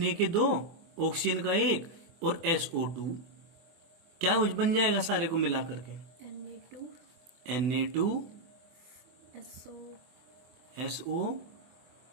के 2, ऑक्सीजन का 1 और SO2, क्या बन जाएगा सारे को मिला करके? Na2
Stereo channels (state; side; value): late; left; 24 ms